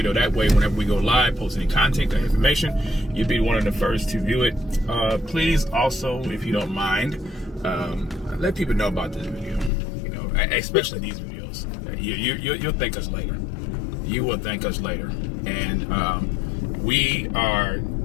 That way, whenever we go live, post any content or information, you'll be one of the first to view it. Please also, if you don't mind, let people know about this video. You know, especially these videos. You'll thank us later. You will thank us later. And we are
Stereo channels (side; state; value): right; drops out; at 9.7 s